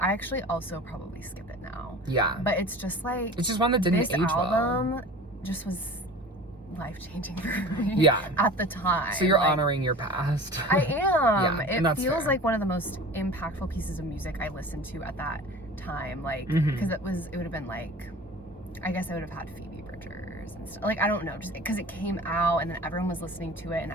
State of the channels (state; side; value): normal; both; correlation 0.40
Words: actually also probably skip it now. Yeah. But it's just like It's just one that didn't this age well. album just was life-changing for me. Yeah. At the time. So you're Like, honoring your past. I am. Yeah, and It that's feels fair. like one of the most impactful pieces of music I listened to at that time. Like, Mhm. because it would have been like, I guess I would have had Phoebe Bridgers and stuff. Like, I don't know, just because it came out and then everyone was listening to it and